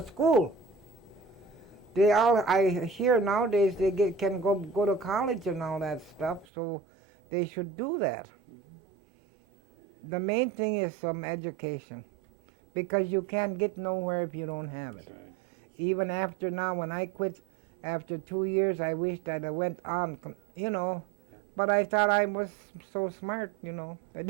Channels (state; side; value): drops out; left; at 6.5 s